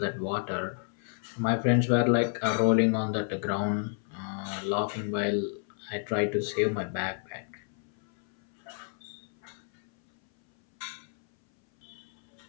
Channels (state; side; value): silent; right; 58 dB below the other